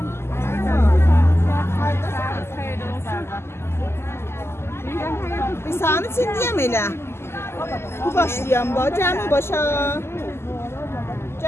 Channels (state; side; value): late; right; 0.12 ms